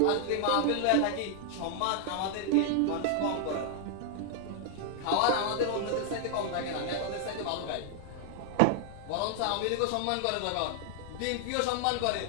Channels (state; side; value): different; both; correlation 0.00